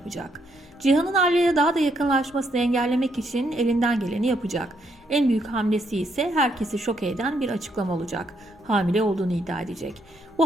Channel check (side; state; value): both; normal; correlation 0.75